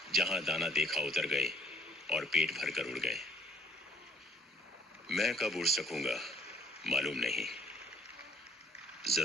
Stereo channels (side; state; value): both; normal; correlation 0.60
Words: जहां दाना देखा उतर गए और पेट भर कर उड़ गए। मैं कब उड़ सकूंगा मालूम नहीं।